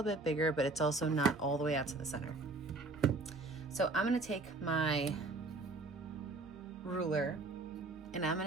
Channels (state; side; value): quieter; left; 3.3 dB